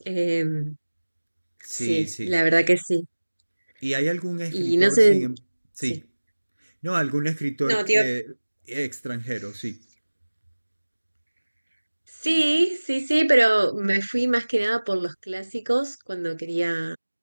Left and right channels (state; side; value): inverted; both; correlation -1.00